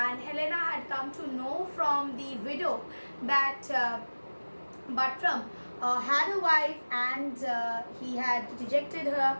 Helena had come to know from the widow that Buttram had a wife, and he had rejected her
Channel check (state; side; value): inverted; both; correlation -1.00